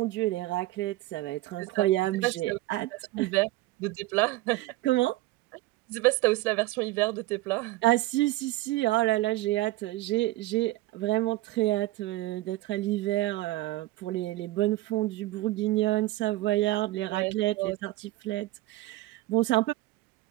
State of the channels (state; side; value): quieter; left; 18.0 dB